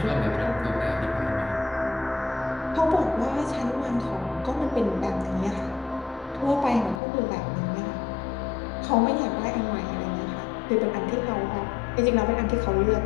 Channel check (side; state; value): right; drops out; at 7.0 s